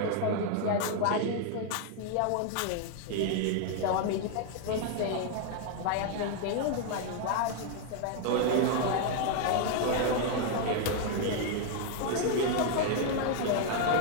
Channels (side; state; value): both; different; correlation 0.00